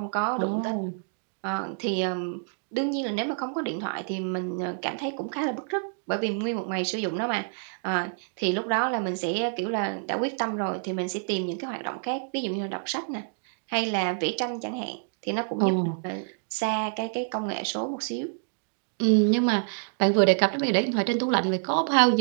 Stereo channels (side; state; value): left; silent; digital silence